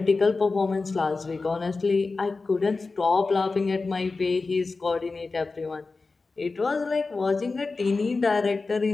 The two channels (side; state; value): right; quieter; 3.9 dB